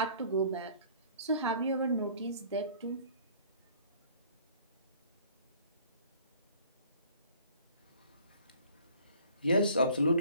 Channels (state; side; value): inverted; both; correlation -0.53